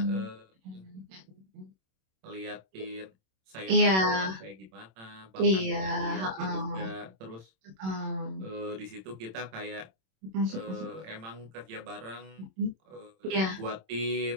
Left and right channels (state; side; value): late; left; 26 ms